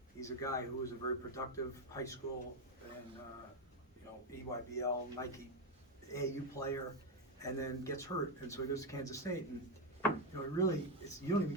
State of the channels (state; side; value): normal; both; correlation 0.07